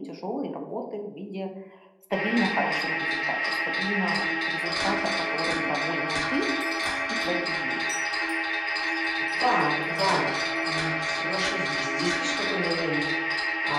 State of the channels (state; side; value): identical; both; correlation 1.00